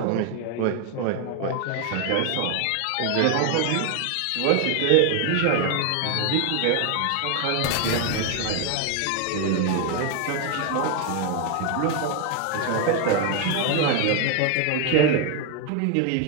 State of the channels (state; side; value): different; both; correlation 0.01